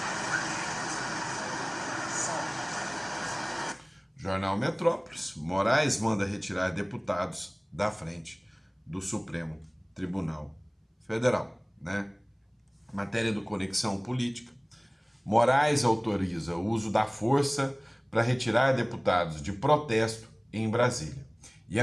Jornal Metrópolis, Moraes manda retirar deputados da frente do Supremo Tribunal Federal, né? Matéria do Conexão Política. Moraes autoriza o uso da força para retirar deputados de protesto em Brasília. E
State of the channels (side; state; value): both; identical; correlation 1.00